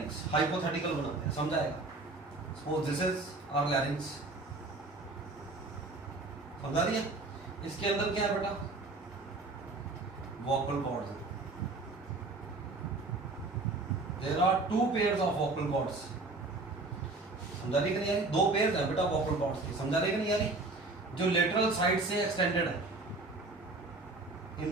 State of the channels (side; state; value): left; quieter; 3.3 dB